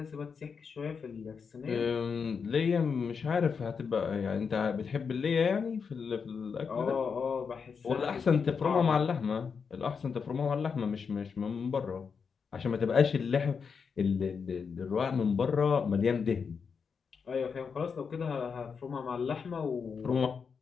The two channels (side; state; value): right; quieter; 5.9 dB